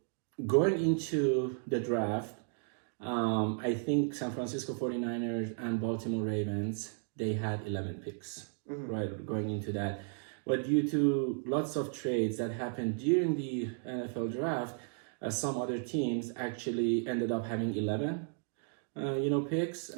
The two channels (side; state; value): left; silent; 55 dB below the other